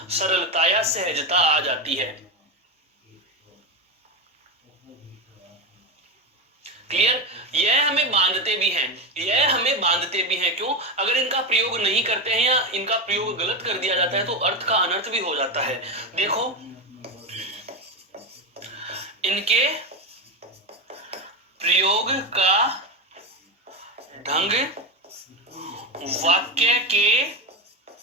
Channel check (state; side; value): normal; both; correlation 0.15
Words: सरलता या सहजता आ जाती है। क्लियर? यह हमें बांधते भी हैं, यह हमें बांधते भी हैं। क्यों? अगर इनका प्रयोग नहीं करते हैं या इनका प्रयोग गलत कर दिया जाता है तो अर्थ का अनर्थ भी हो जाता है। देखो, इनके प्रयोग का ढंग